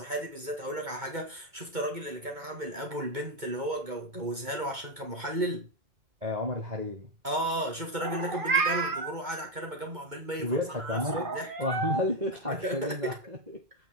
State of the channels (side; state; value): left; late; 2.2 ms